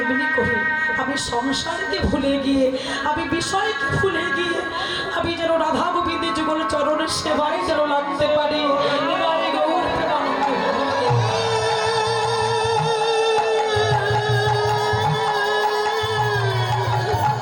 করে আমি সংসারকে ভুলে গিয়ে, আমি বিষয়কে ভুলে গিয়ে, আমি যেন রাধা গোবিন্দের যুগল চরণের সেবায় যেন লাগতে পারি।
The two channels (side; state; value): both; identical; correlation 1.00